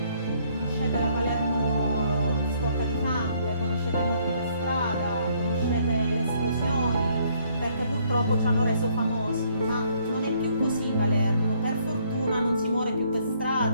Conoscete la Palermo sporca di sangue, conoscete i morti per strada, conoscete le esplosioni, perché purtroppo ci hanno reso famosi, ma non è più così Palermo. Per fortuna non si muore più per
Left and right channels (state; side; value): inverted; both; correlation -0.66